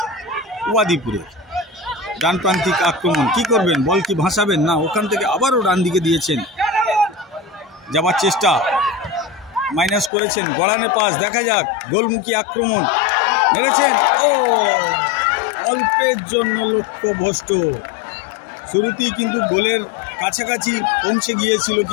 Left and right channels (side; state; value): right; drops out; at 10.1 s